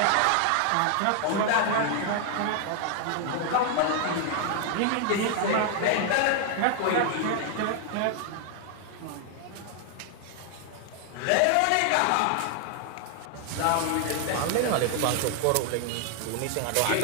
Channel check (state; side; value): different; both; correlation 0.00